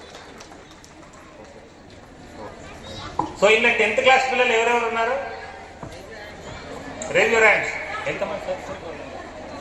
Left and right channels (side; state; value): both; identical; correlation 1.00